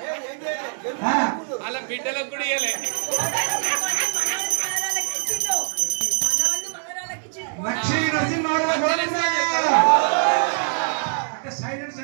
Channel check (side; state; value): left; silent; digital silence